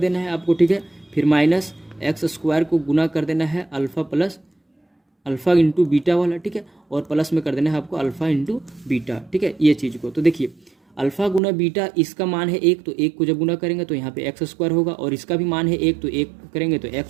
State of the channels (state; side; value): drops out; left; at 11.4 s